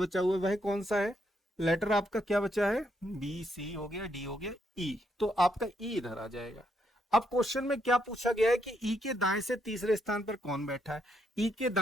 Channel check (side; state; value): both; normal; correlation 0.77